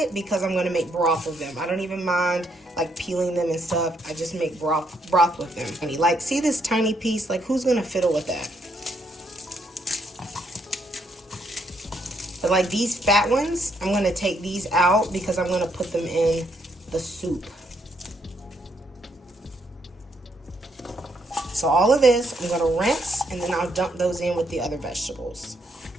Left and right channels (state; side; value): normal; both; correlation 0.74